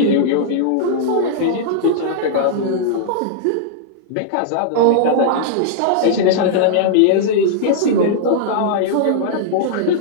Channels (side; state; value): both; different; correlation -0.02